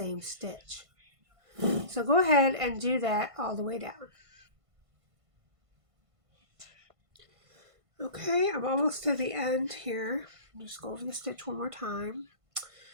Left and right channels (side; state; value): left; late; 1.5 ms